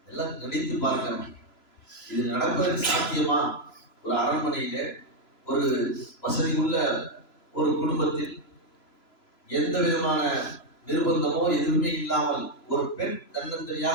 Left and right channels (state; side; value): late; right; 3.0 ms